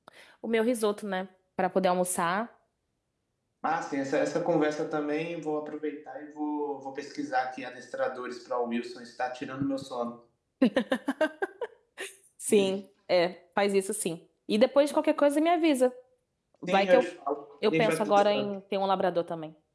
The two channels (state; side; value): identical; both; correlation 1.00